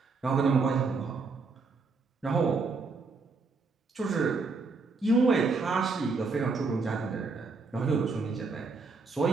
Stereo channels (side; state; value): left; quieter; 4.2 dB